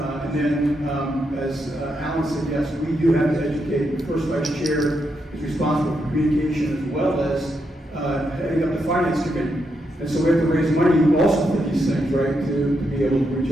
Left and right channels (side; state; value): both; normal; correlation 0.82